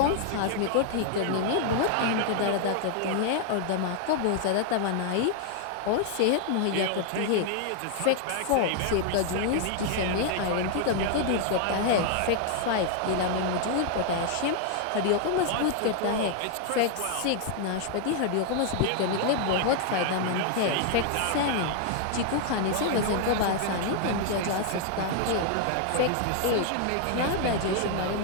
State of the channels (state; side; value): different; both; correlation 0.00